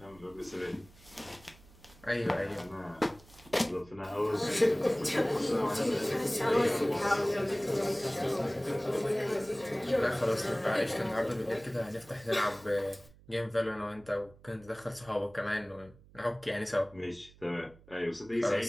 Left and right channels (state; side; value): noise; right; hum, 24 dB below the sound